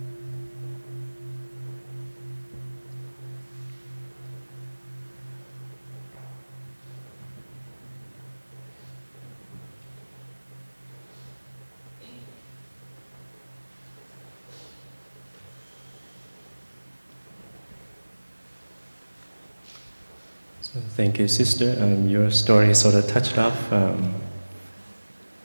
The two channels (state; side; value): inverted; both; correlation -1.00